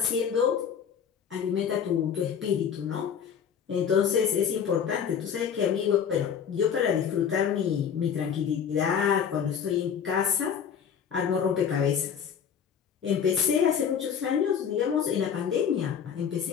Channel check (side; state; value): right; quieter; 7.7 dB